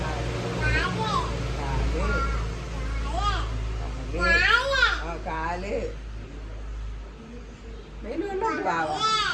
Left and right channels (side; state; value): both; identical; correlation 1.00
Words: കാല്. വെയിൽ കൊണ്ടിട്ട് ബാവ,